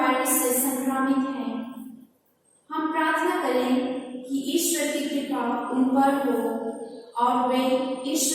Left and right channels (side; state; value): both; identical; correlation 1.00